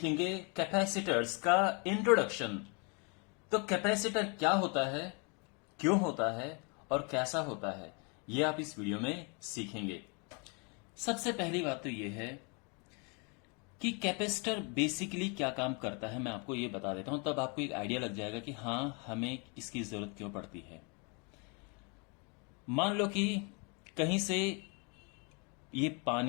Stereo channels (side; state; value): right; quieter; 33.7 dB